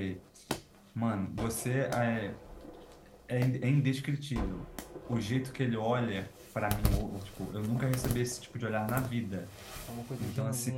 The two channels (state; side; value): identical; both; correlation 1.00